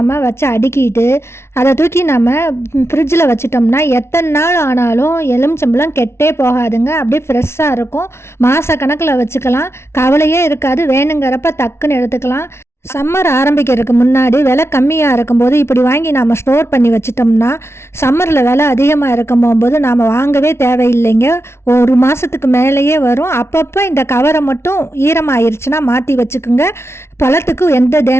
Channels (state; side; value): late; right; 0.13 ms